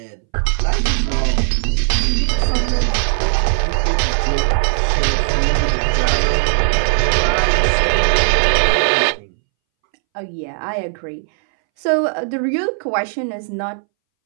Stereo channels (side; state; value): left; silent; 65 dB below the other